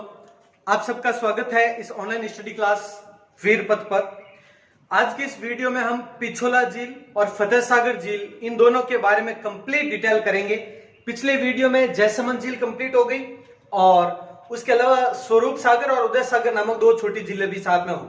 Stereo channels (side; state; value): both; identical; correlation 1.00